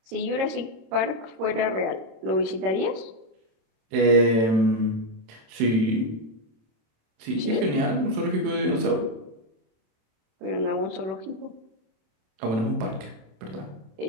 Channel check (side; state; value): left; late; 27 ms